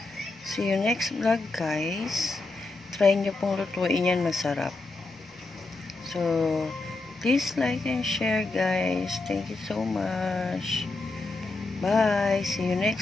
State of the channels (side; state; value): right; quieter; 3.3 dB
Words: see you next vlog guys. Try nyo pong lutuin yan, masarap. So, please like and share guys. Thank you so much. Bye. See you